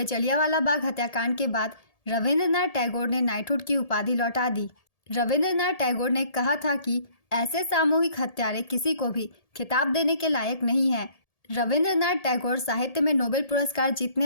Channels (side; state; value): right; late; 1.8 ms